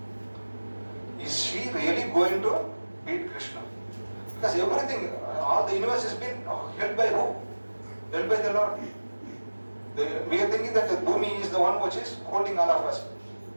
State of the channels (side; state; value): both; inverted; correlation -1.00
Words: Is she really going to beat Krishna? Because everything, all the universe has been held by who? Held by the Lord. We are thinking that the Bhumi is the one which is holding all of us.